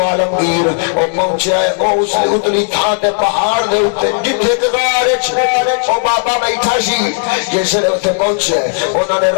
عالمگیر او پہنچیا ہے او اس اتلی تھان تے پہاڑ دے اوتے جتھے غار وچ او بابا بیٹھا سی جس لے اوتے پہنچے انہاں نے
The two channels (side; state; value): right; silent; digital silence